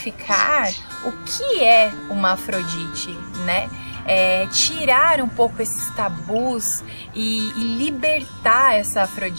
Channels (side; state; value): both; inverted; correlation -1.00